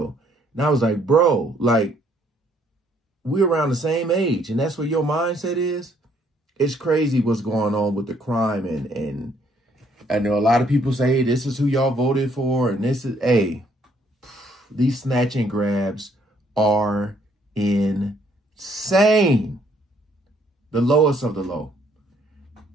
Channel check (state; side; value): normal; both; correlation 0.66